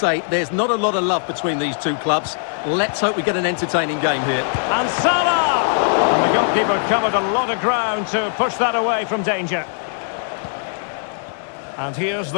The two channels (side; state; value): right; silent; digital silence